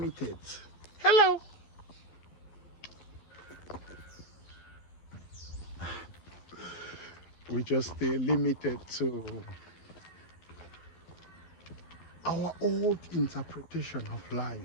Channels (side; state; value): right; late; 12 ms